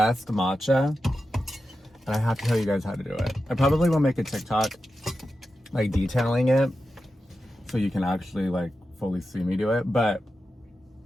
matcha, and I have to tell you guys how to do it. I probably will make a TikTok, like, detailing it, so you can actually, like, fully see me do it. But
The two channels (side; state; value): both; normal; correlation 0.91